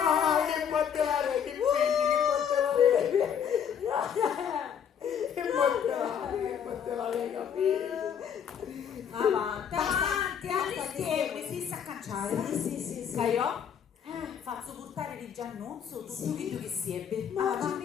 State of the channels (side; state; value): right; quieter; 8.1 dB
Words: batterare, che figli, che batterare, capito? avanti, arrischiamo, si sa cacciare. Sì. Caio? Faccio portare di Giannuzzo tutto che si ebbe. Mamma